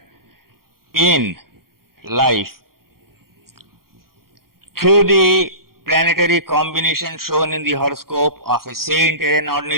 in life through the planetary combination shown in the horoscope of a saint and an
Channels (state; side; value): late; left; 0.93 ms